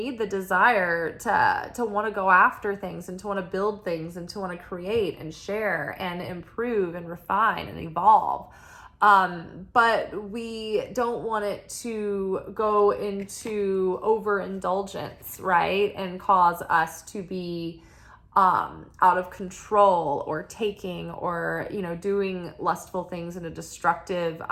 the desire to want to go after things, and to want to build things, and to want to create and share and improve and refine and evolve. But we don't want it to go into overindulgence, right? And cause us to be out of control, or taking, or doing lustful things in a destructive,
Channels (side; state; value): both; identical; correlation 1.00